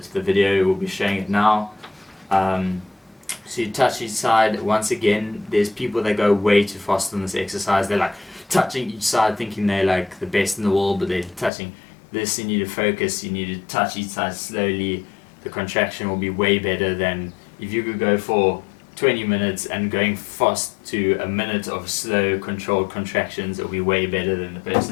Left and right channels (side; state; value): right; drops out; at 11.5 s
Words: the video will be showing it now. So you touch each side. Once again, there's people that go way too fast on this exercise. They're like touching each side thinking they're like the best in the world, but they're touching this. You need to focus. You need to touch each side slowly. The contraction will be way better than if you could go for 20 minutes and going fast to a minute of slow controlled contractions. It'll be way better than the